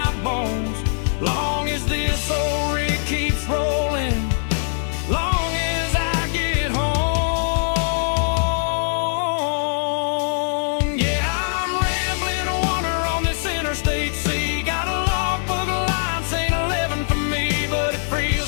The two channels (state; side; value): silent; right; digital silence